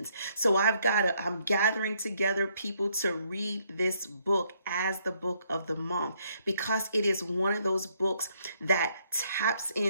So I'm gathering together people to read this book as the book of the month, because it is one of those books that taps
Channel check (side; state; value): both; inverted; correlation -0.71